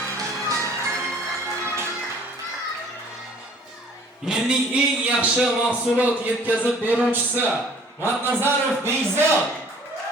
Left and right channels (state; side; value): normal; both; correlation 0.53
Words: Yilning eng yaxshi mahsulot yetkazib beruvchisi Matnazarov Bekzod.